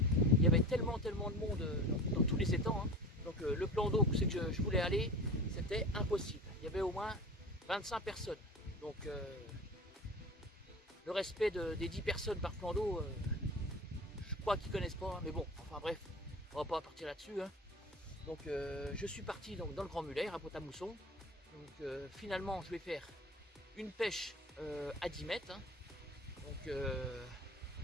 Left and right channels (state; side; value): normal; both; correlation 0.36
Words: il y avait tellement de monde dans tous les étangs. Donc le plan d'eau où c'est que je voulais aller, c'était impossible. Il y avait au moins 25 personnes. Donc le respect des 10 personnes par plan d'eau, je crois qu'ils ne connaissent pas. Mais bon, enfin bref, on va pas partir là-dessus. Donc je suis parti dans le Grand Muller, à Pont-à-Mousson. Donc finalement, je vais faire une pêche à 10 mètres.